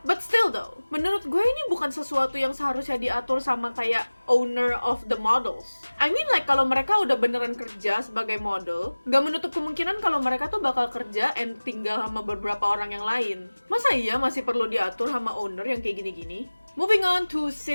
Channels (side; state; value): both; inverted; correlation -1.00